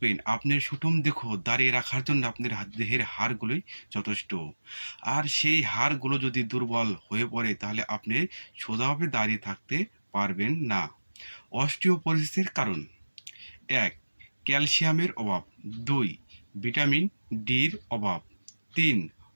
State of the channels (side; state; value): both; inverted; correlation -1.00